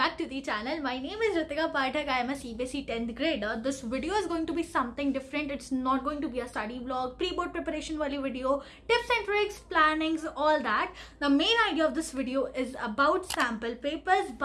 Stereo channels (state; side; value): identical; both; correlation 1.00